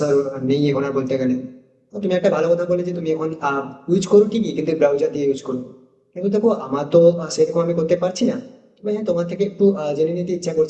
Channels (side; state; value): both; identical; correlation 1.00